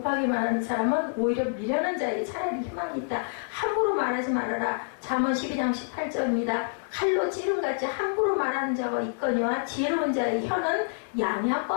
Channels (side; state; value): right; silent; digital silence